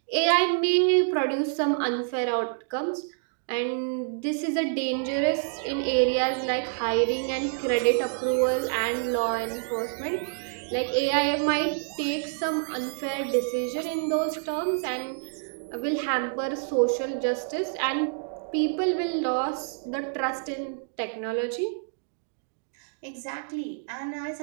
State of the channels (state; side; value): silent; left; digital silence